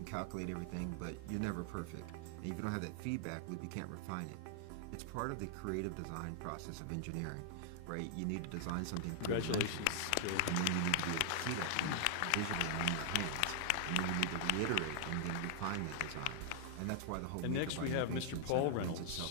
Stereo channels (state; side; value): different; both; correlation -0.01